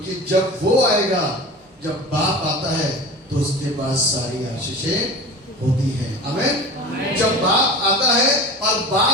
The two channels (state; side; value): normal; both; correlation 0.34